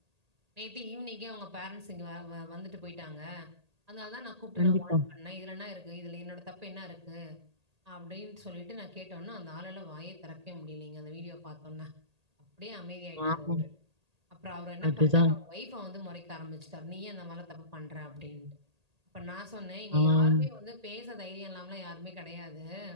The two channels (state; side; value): late; left; 1.8 ms